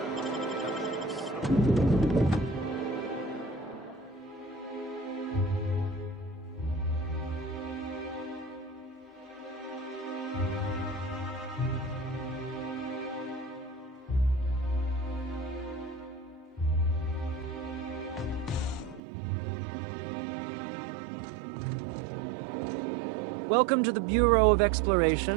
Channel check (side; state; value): left; drops out; at 19.0 s